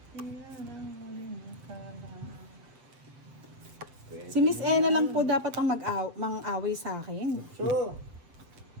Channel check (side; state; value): left; late; 7.6 ms